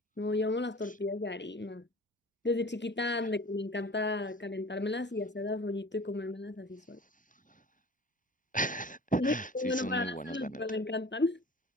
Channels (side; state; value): both; normal; correlation 0.42